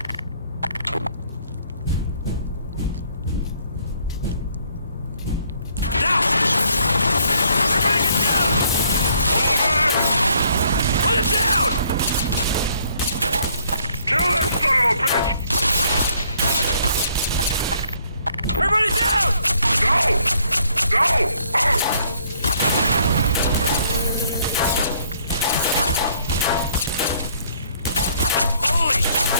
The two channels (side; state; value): both; inverted; correlation -0.64